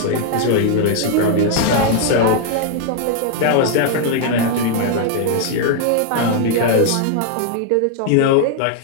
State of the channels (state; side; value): different; both; correlation 0.00